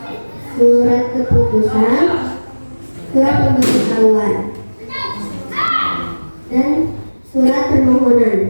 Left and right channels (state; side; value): inverted; both; correlation -1.00